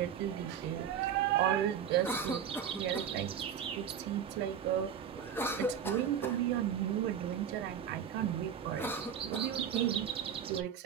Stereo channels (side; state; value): left; quieter; 8.6 dB